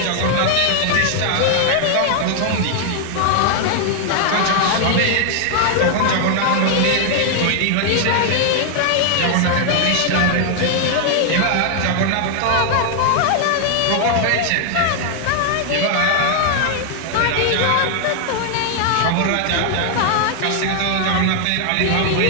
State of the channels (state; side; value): different; both; correlation 0.00